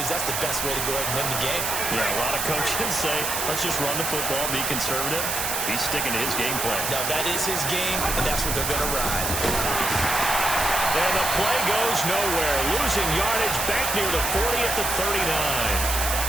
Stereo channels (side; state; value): right; noise; hiss, 1 dB below the sound